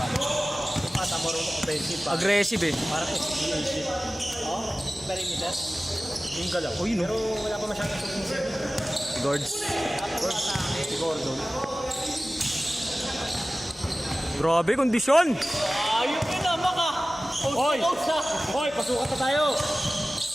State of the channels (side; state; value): both; normal; correlation 0.97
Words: Yung pata marunong offensive pa. Aggressive eh. Parang SGA shit. Oh, perimeter. Yung galaw. Uy, no. Pero wala pa masyadong submissive. Guards. Si Gordon. Grabe, kondisyon. Ayun yun na, maka! Hoy! Hoy, pasukat na tayo!